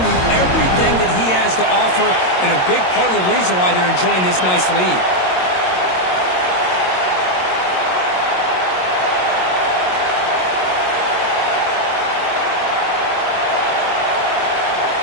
everything that he has to offer, and a big part of the reason why they're enjoying this nice lead.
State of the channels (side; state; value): right; late; 22 ms